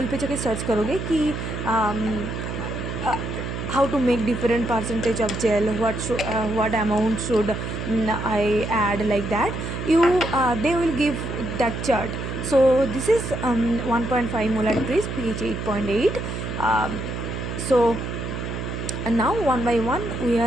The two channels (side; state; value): right; noise; hum, 5 dB below the sound